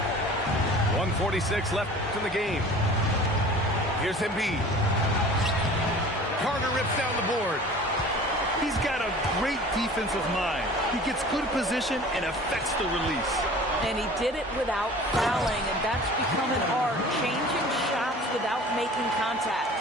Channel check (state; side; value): normal; both; correlation 0.44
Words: .146 left in the game. Here's Embiid. Carter rips down the board. He's got a great defensive mind. He gets good position and affects the release. And he did it without fouling, and that's become an art, changing shots without making contact.